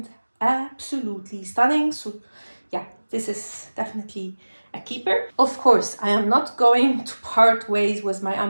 absolutely stunning. So yeah, this is definitely a keeper. Of course, I am not going to part ways with my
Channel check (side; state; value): both; inverted; correlation -1.00